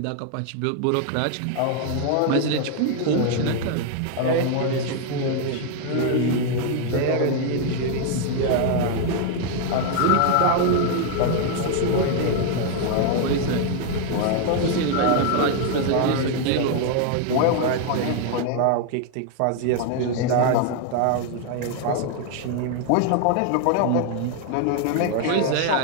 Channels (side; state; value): both; different; correlation 0.00